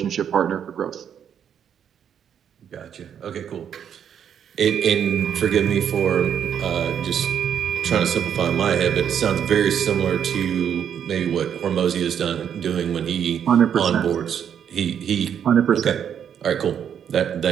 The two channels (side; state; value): left; quieter; 8.6 dB